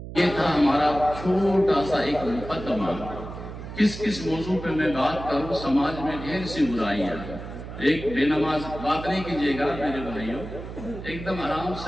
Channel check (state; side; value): noise; right; hum, 10 dB below the sound